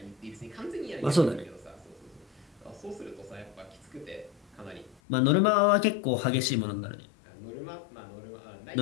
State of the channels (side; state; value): right; drops out; at 5.0 s